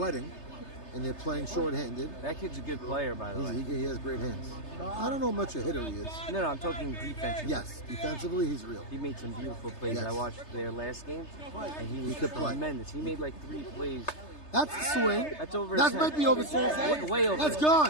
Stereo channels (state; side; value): late; right; 3.3 ms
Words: and they're playing short-handed. That kid's a good player, by the way. He has great hands. I don't know how much a hitter he is. No, I'm talking defensively. Yes, defensively he's real. He made some beautiful plays. Yes. I watched their last game, and he was could play. tremendous. He made like 3 plays. That's the swing. That's over. That 10. might be over 10. Way over. That's